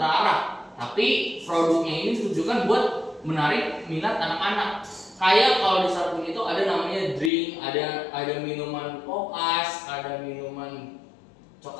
tapi produknya ini ditujukan buat menarik minat anak-anak. Kayak kalau di Starqueen itu ada namanya drink, ada minuman pop ice, ada minuman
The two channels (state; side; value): drops out; right; at 7.3 s